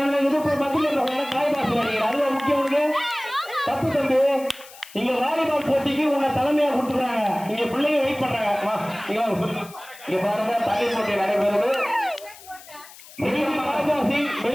இது மத்தியில் காய் பாசு நினைக்கிறேன். அதுதான் முக்கியம். உனக்கு தப்பு தம்பி. இங்க வாலிபால் போட்டிக்கு உன்னை தலைமையா கொடுத்துருக்காங்க. இங்க பிள்ளைங்க வெயிட் பண்றாங்க. இங்க பாருங்க தண்ணீர் போட்டி நடைபெறுது.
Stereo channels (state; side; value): noise; left; hiss, 19 dB below the sound